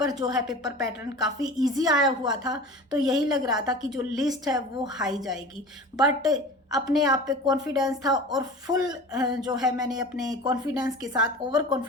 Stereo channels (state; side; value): normal; both; correlation 0.37